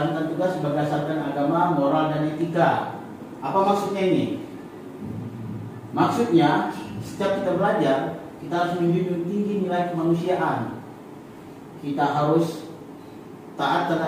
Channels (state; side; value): identical; both; correlation 1.00